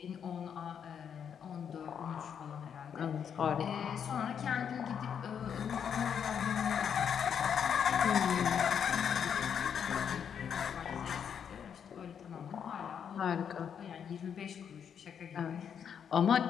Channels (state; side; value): quieter; right; 7.8 dB